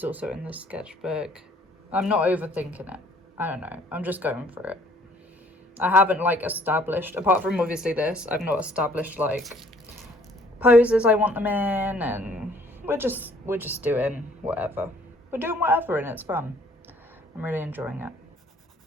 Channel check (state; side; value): normal; both; correlation 0.59